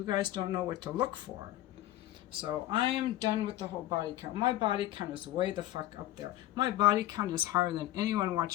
guys don't know what to look for. So I am done with the whole body count. My body count is way the fuck up there. My body count is higher than anyone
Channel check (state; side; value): quieter; right; 14.6 dB